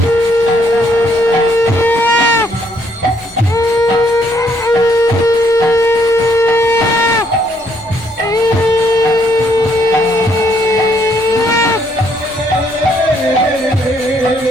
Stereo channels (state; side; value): normal; both; correlation 0.70